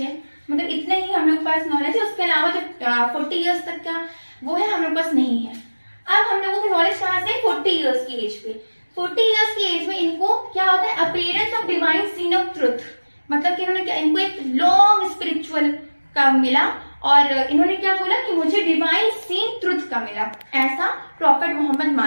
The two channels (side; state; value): both; inverted; correlation -1.00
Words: मतलब इतने ही हम लोग के पास नॉलेज है। उसके अलावा जो 40 इयर्स तक का वो है हम लोग पास नहीं है। अब हम लोगों की नॉलेज कहाँ से? 40 इयर्स की एज पे। 40 इयर्स की एज में इनको क्या होता है? Appearance of divine scene of truth, मतलब कि इन्होंने क्या, इनको एक लॉन्ग स्पिरिचुअल का मिला और इन्होंने क्या बोला कि मुझे डिवाइन सीन ट्रुथ का मिला, ऐसा प्रॉफेट मोहम्मद